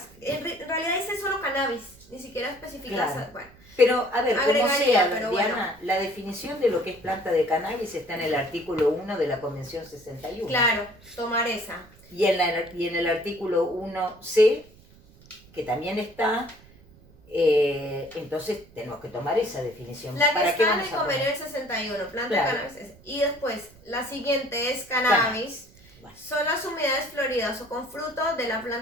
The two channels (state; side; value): noise; right; rumble, 25 dB below the sound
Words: En realidad dice solo cannabis, ni siquiera especifica... Claro. Bueno, Pero, a ver, como agregaría, sea, pero Diana, bueno. la definición de lo que es planta de cannabis está en el artículo 1 de la Convención 61. Claro, tomar esa. Y en el artículo 1C, que también está, entonces tenemos que tomar esa definición. La que ¿Para qué está en vamos el a poner? convenio del 61, planta Claro. de cannabis. Y después, la siguiente es cannabis. Bueno. Son las unidades floridas o con fruto de la